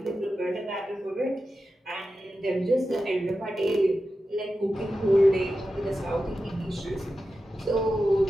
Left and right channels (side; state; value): both; normal; correlation 0.92